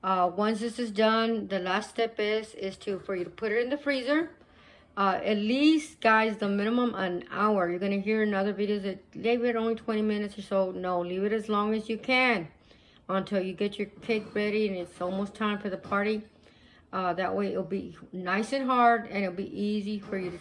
Once this is done, the last step is for you to put it in the freezer. At least, guys, the minimum an hour. You're going to hear in other videos that leave it only 20 minutes or so. No, leave it as long as you can until you get your cake ready and it's almost time for the party. That way it'll be nice and hard and it'll be easy for you to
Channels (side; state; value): both; identical; correlation 1.00